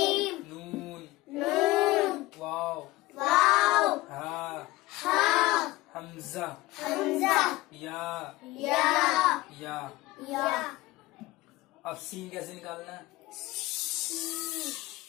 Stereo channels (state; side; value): quieter; right; 19.1 dB